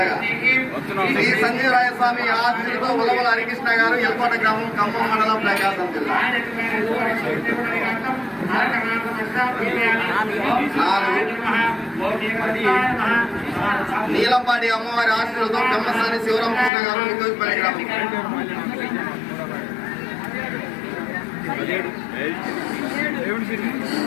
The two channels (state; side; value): drops out; right; at 16.7 s